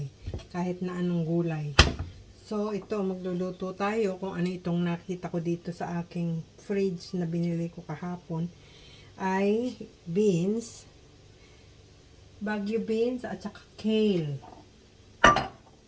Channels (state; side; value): identical; both; correlation 1.00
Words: kahit na anong gulay. So, ito, magluluto tayo kung ano itong nakita ko dito sa aking fridge na binili ko kahapon. Ay beans, Baguio beans, at saka kale.